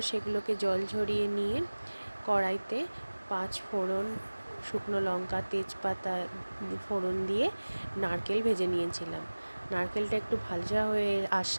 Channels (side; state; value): both; inverted; correlation -1.00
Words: সেগুলোকে জল ঝরিয়ে নিয়ে কড়াইতে 5 ফোড়ন, শুকনো লঙ্কা, তেজপাতা ফোড়ন দিয়ে নারকেল ভেজে নিয়েছিলাম। নারকেলটা একটু ভাজা হয়ে